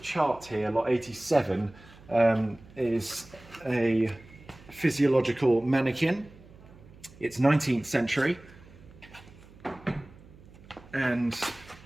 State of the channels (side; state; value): right; noise; hum, 22 dB below the sound